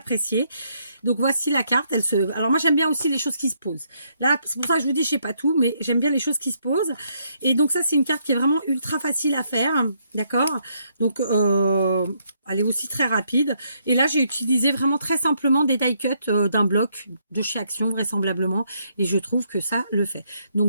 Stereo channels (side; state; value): both; inverted; correlation -0.73